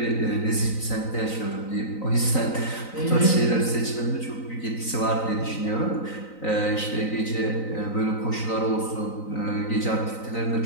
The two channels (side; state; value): right; late; 3.9 ms